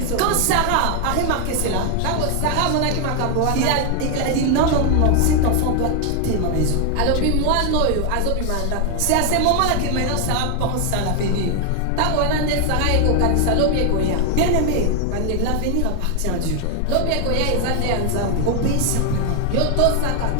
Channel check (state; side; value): different; both; correlation 0.00